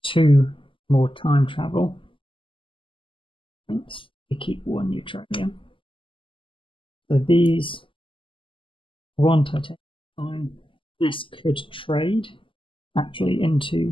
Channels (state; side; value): late; right; 0.25 ms